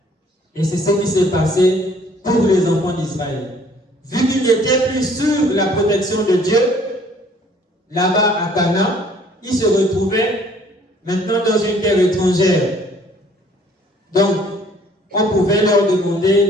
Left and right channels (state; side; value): normal; both; correlation 0.58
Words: Et c'est ce qui s'est passé pour les enfants d'Israël. Vu qu'ils n'étaient plus sur la protection de Dieu, là-bas à Canaan, ils se retrouvaient maintenant dans une terre étrangère. Donc, on pouvait leur demander